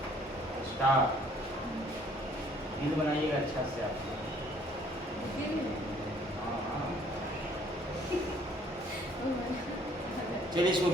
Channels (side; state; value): both; normal; correlation 0.60